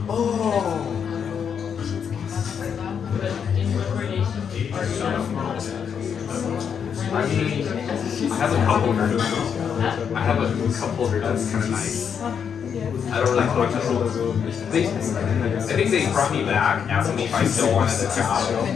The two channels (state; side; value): quieter; right; 7.4 dB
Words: Oh. I mean, I have a couple here. I have a couple here that's kind of nice. I don't really talk to them. I think they brought me back, asking me if I still wanted the job.